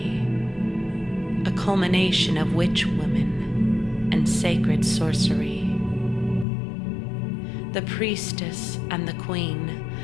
A culmination of witch women and sacred sorcery. The priestess and the queen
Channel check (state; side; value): drops out; right; at 6.5 s